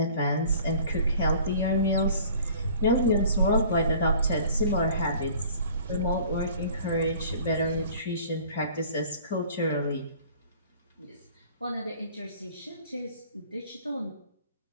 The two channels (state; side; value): inverted; both; correlation -0.49